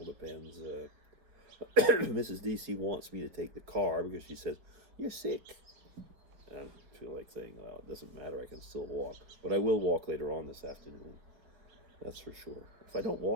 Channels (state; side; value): late; left; 5.7 ms